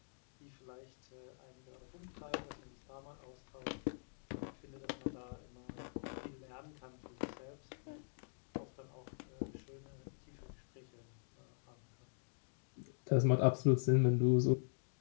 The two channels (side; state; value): right; silent; digital silence